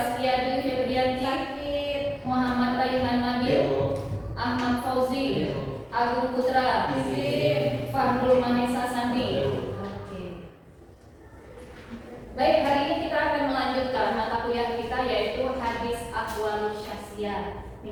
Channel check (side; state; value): both; identical; correlation 1.00